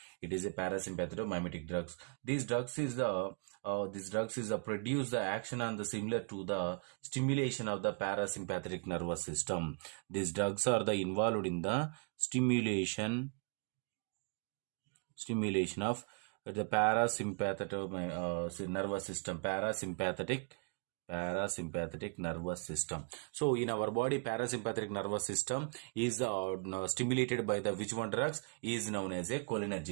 It is a parasympathetomimetic drugs. These drugs is the produce the action on the similar to the stimulation of the parasympathetic nervous system. These drugs are the involved in the stimulation of the parasympathetic nervous system, parasympathetic nervous system. So in our body, parasympathetic nervous system is stimulated by the which one drugs is known as a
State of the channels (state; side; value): quieter; left; 35.6 dB